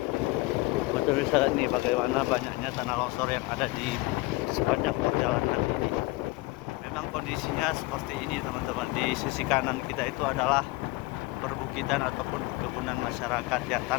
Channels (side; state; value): right; quieter; 21.6 dB